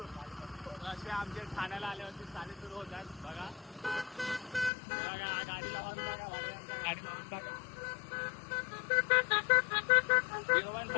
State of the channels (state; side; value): drops out; right; at 4.7 s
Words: असे आमच्या ठाण्याला आल्यावरती चाले सुरू होतात. बघा गाडी लावून बघा, गाडी लावून बघा.